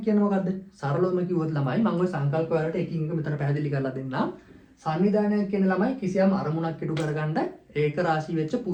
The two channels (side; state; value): both; identical; correlation 1.00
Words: කියන්නේ මොකද්ද? සරලවම කිව්වොත් ළමයි මම ওই සංකල්ප වලට එකින් එක මෙතන පැහැදිලි කරලා දෙන්නම්. සංවිධානයක් කියන්නේ ළමයි කිසියම් අරමුණක් ඉටු කරගන්න ඒක රාශී වෙච්ච